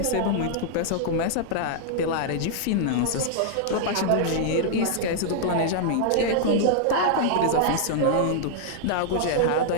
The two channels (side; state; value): both; different; correlation -0.01